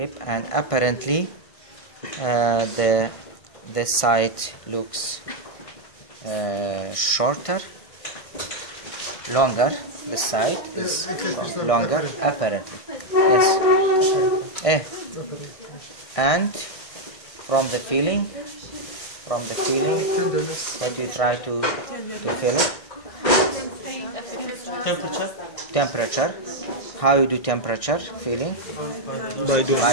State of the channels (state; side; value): late; right; 1.6 ms